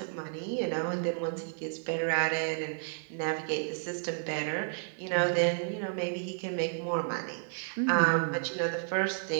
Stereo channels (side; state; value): left; silent; digital silence